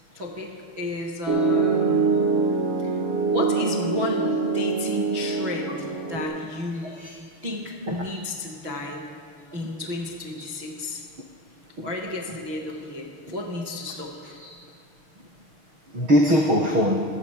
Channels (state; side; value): late; left; 6.1 ms